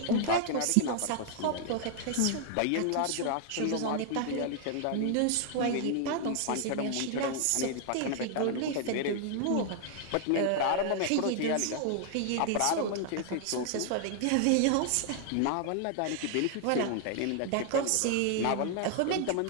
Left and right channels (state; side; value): different; both; correlation 0.00